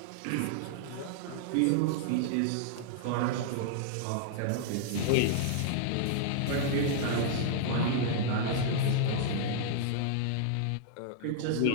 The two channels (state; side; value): different; both; correlation -0.01